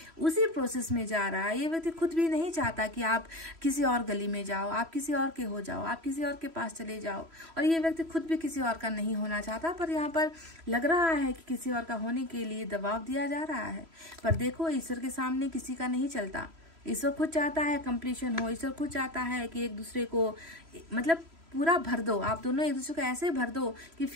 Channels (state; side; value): late; left; 3.0 ms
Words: प्रोसेस में जा रहा है। ये व्यक्ति खुद भी नहीं चाहता कि आप किसी और गली में जाओ, आप किसी और के हो जाओ, आप किसी और के पास चले जाओ, और ये व्यक्ति खुद भी किसी और का नहीं होना चाहता, पर यहाँ पर लग रहा है कि किसी और का होने के लिए दबाव दिया जा रहा है। पर देखो, ईश्वर के सामने किसी का नहीं चलता। ईश्वर खुद चाहता है कंप्लीशन हो, ईश्वर खुद चाहता है कि एक दूसरे को मतलब पूरा भर दो, आप दोनों एक दूसरे को ऐसे भर दो कि